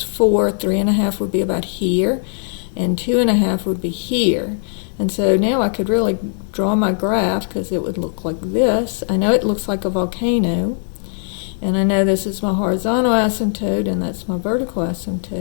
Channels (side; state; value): right; silent; digital silence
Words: 4, 3 1/2 would be about here, and 2 1/2 would be here. And so now I could really draw my graph because it would look like this. I know it looks like a volcano. And I know this is my horizontal asymptote and that's my vertical